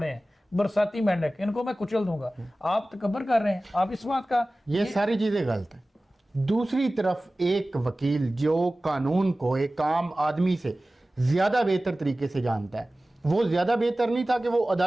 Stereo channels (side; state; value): both; normal; correlation 0.97